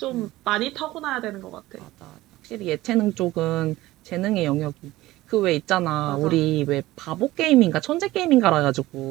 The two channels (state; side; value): quieter; left; 17.3 dB